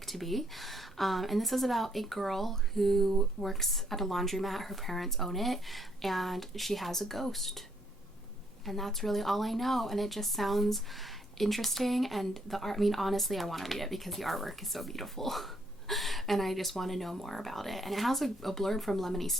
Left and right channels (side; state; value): both; normal; correlation 0.70